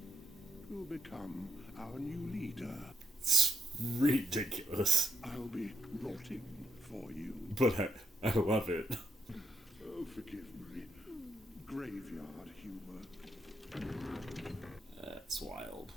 will become our new leader. It's ridiculous. I'll be rotting for you. But I love it. Oh, forgive my graveyard humor. That's wild.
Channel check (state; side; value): normal; both; correlation 0.79